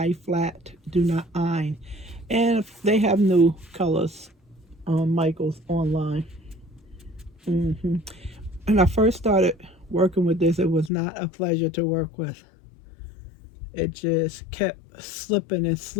flat, do not iron. And they have new colors on Michael's online. When I first started working with this, it was not a pleasure to work with. It just kept slipping and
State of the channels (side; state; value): right; drops out; at 10.9 s